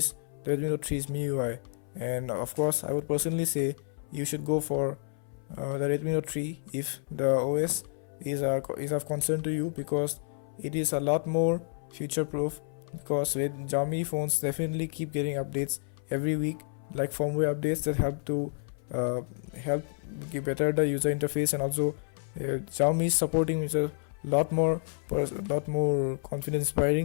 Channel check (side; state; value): right; silent; 58 dB below the other